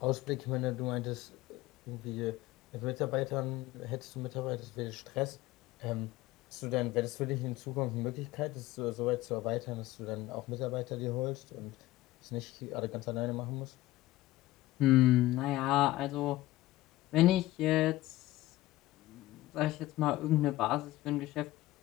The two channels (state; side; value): quieter; right; 16.9 dB